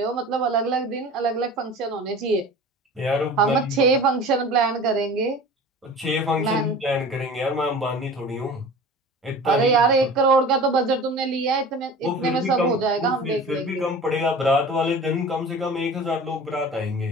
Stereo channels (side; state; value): both; normal; correlation 0.39